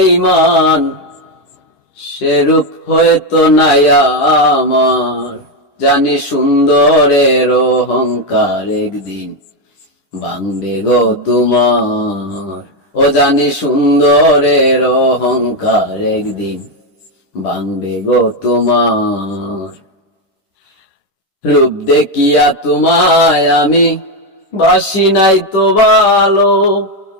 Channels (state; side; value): late; right; 10 ms